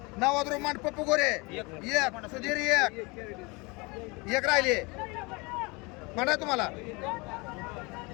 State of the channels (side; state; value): right; quieter; 26.9 dB